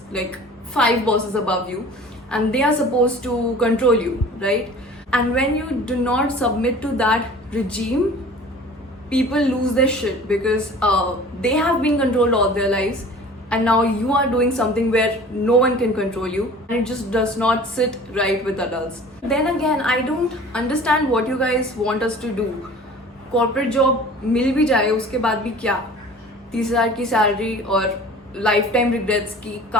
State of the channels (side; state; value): both; normal; correlation 0.44